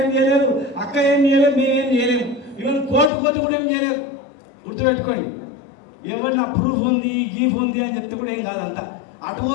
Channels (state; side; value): drops out; right; at 3.1 s